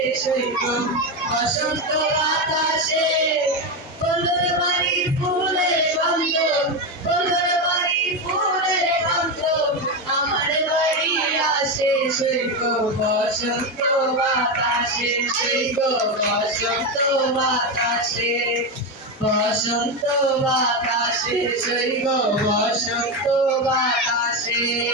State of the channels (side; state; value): both; normal; correlation 0.12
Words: সৈব বসন্ত বাতাসে বন্ধুর বাড়ির ফুলের গন্ধ বন্ধুর বাড়ির ফুলের গন্ধ আমার বাড়ি আসে সৈব বসন্ত বাতাসে সৈব বসন্ত বাতাসে বসন্ত বাতাসে সৈব বসন্ত বাতাসে।